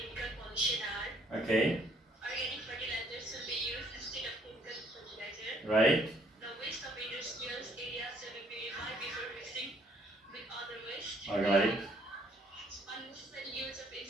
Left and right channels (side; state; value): both; normal; correlation 0.64